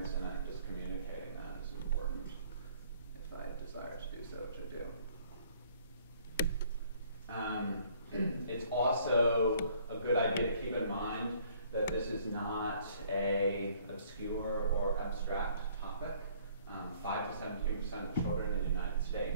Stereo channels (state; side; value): inverted; both; correlation -0.59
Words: in it, just communicating that is important if I desire to do so, which I do. It's also a good idea to keep in mind that this is not an obscure or abstract topic. 5 to 17% of children in the United